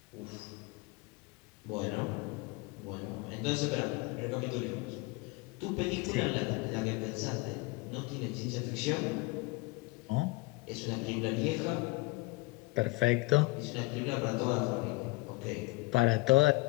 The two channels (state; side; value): quieter; right; 23.2 dB